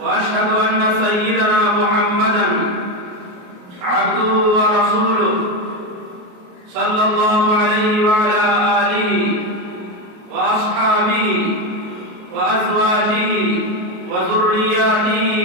وأشهد أن سيدنا محمدًا عبده ورسوله صلى الله عليه وعلى آله وأصحابه وأزواجه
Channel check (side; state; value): left; late; 28 ms